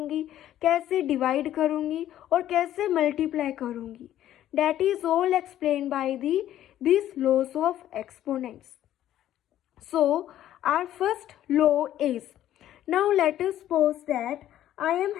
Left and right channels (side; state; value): right; quieter; 12.3 dB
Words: कैसे डिवाइड करूँगी और कैसे मल्टीप्लाई करूँगी. That is all explained by these laws of exponents. So our first law is, now let us suppose that I